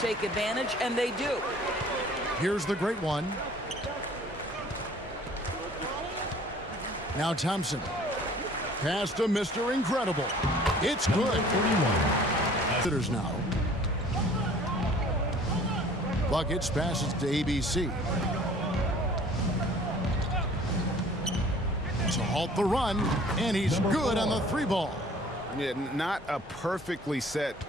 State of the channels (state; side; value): normal; both; correlation 0.51